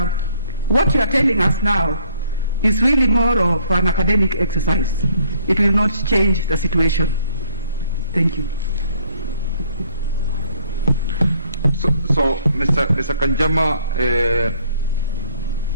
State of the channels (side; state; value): both; inverted; correlation -0.63